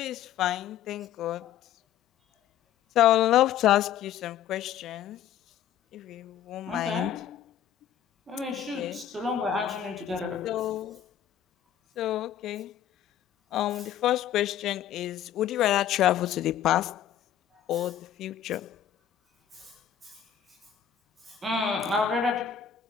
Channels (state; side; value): quieter; right; 10.0 dB